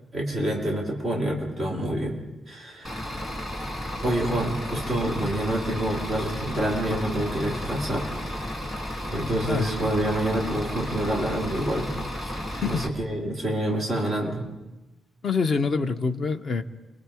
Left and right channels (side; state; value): both; normal; correlation 0.77